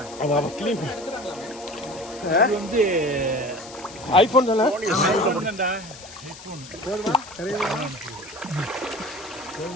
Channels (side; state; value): left; noise; hiss, 17 dB below the sound